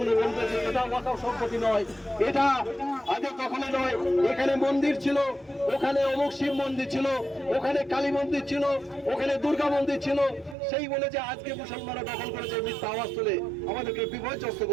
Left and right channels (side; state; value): left; drops out; at 10.6 s